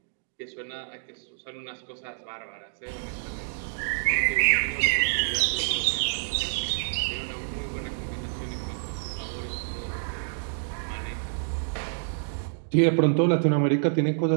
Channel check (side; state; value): left; silent; digital silence